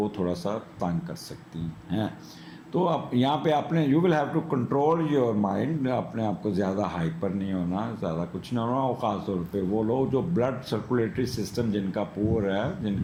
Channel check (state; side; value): identical; both; correlation 1.00